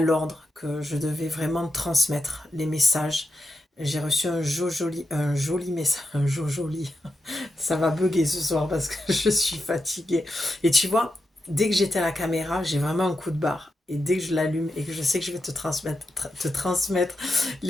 que je devais vraiment transmettre les messages. J'ai reçu un joli message, un joli. Ça va bugger ce soir parce que je suis fatiguée. Et tu vois, dès que j'étais à la caméra, j'ai vraiment un coup de barre. Et dès que je l'allume et que je sais que je vais te transmettre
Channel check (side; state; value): both; normal; correlation 0.87